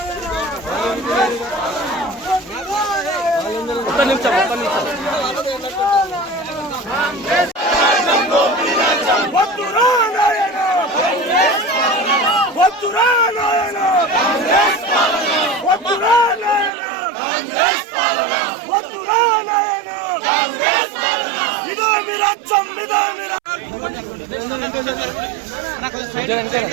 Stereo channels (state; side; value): drops out; left; at 16.7 s